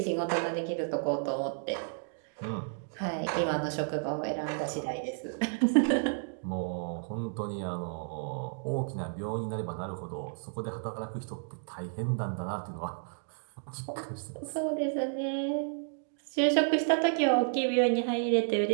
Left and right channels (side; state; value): left; silent; digital silence